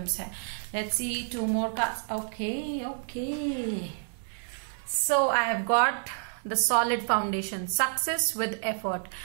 है। Let's see 2 more cards. Okay, so I have got the solid foundation, success with effort.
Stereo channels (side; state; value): left; silent; digital silence